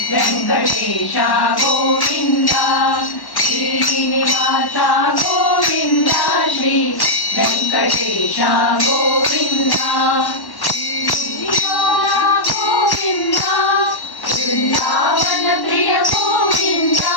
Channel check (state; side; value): late; right; 1.1 ms